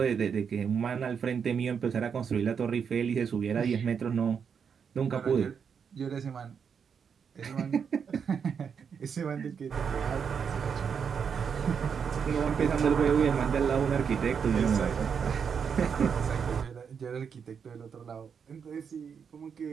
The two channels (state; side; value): quieter; left; 6.8 dB